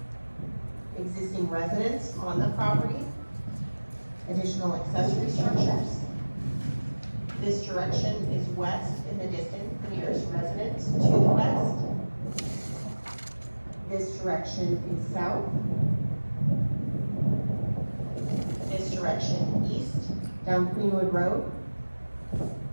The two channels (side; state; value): both; inverted; correlation -1.00